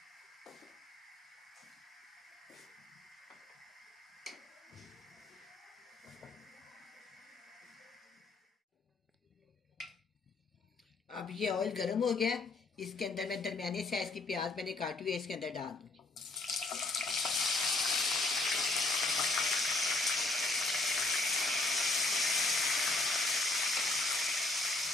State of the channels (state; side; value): quieter; right; 3.1 dB